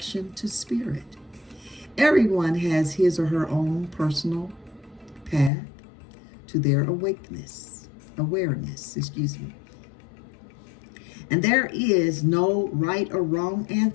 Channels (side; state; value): right; drops out; at 5.5 s